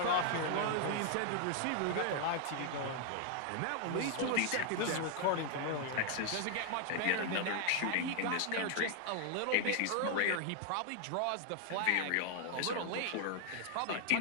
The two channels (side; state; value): both; different; correlation 0.00